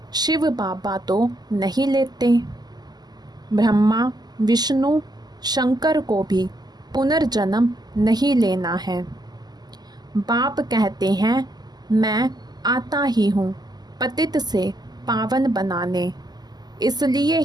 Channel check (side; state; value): left; late; 0.20 ms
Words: शिव बाबा तो नहीं लेते, ब्रह्मा विष्णु शंकर को भी पुनर्जन्म नहीं लेना है। बाप कहते हैं मैं आता ही हूँ पतित से पावन बनाने, इसलिए